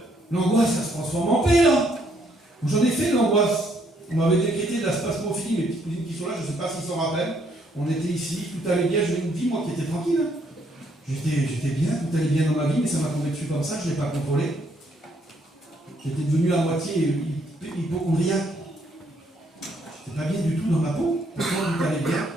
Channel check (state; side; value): normal; both; correlation 0.70